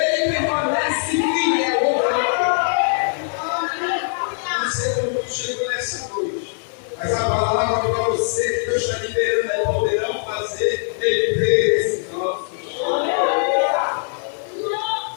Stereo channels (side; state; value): right; silent; digital silence